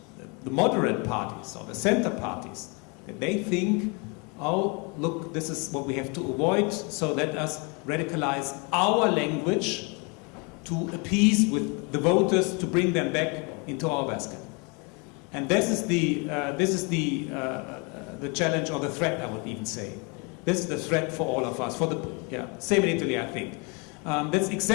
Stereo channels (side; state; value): right; quieter; 31.8 dB